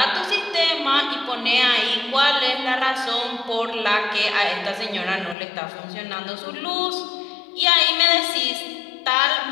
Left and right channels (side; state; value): right; drops out; at 5.4 s